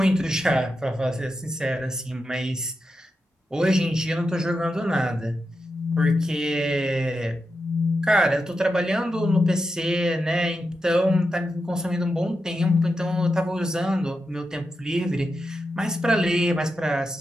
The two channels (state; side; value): normal; both; correlation 0.88